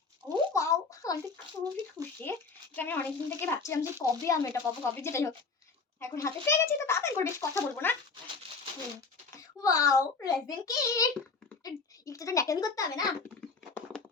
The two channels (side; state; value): right; quieter; 4.4 dB